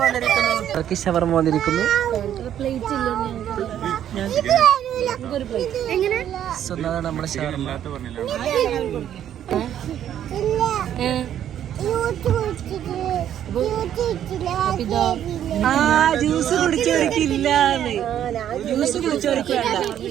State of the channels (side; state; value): left; quieter; 10.5 dB